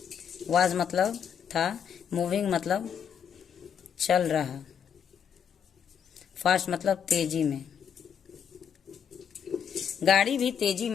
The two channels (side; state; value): right; quieter; 7.9 dB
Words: वॉज मतलब था, मूविंग मतलब चल रहा, फास्ट मतलब तेजी में, गाड़ी भी तेजी